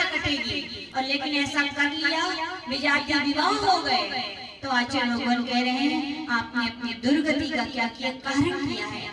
कटेगी। और लेकिन ऐसा कर लिया, विजाति विवाह हो गए, तो आचार्य भगवान कह रहे हैं आपने अपनी दुर्गति का क्या किया? कारण किया है।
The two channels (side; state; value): both; identical; correlation 1.00